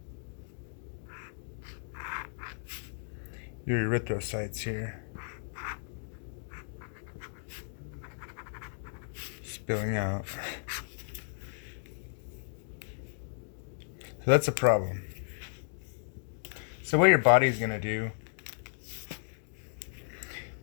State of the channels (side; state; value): right; silent; digital silence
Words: your erythrocytes here spilling out. So that's a problem. So what your body is going to do